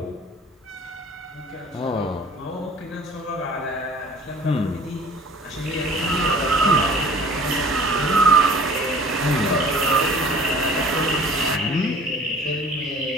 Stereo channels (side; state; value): both; normal; correlation 0.48